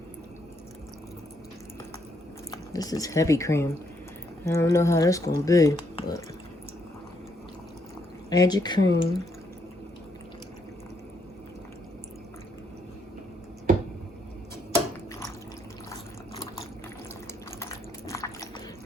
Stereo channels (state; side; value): normal; both; correlation 0.74